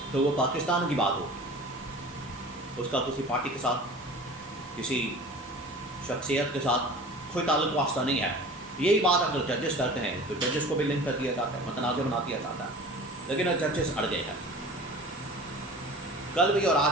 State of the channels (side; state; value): both; normal; correlation 0.40